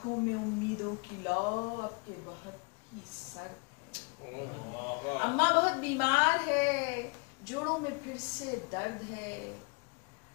में उम्मीदों की लौ अब के बहुत ही सर्द है। अम्मा बहुत बीमार है, जोड़ों में फिर से दर्द है,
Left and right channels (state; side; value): quieter; right; 30.2 dB